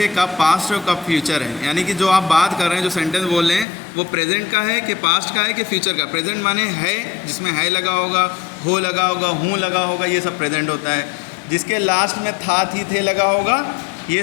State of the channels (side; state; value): right; drops out; at 3.7 s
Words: कब पास्ट है और कब फ्यूचर है। यानी कि जो आप बात कर रहे हैं, जो सेंटेंस बोल रहे हैं, वो प्रेजेंट का है कि पास्ट का है कि फ्यूचर का। प्रेजेंट माने है, जिसमें है लगा होगा, हो लगा होगा, हूँ लगा होगा, ये सब प्रेजेंट होता है। जिसके लास्ट में था, थी, थे लगा होगा,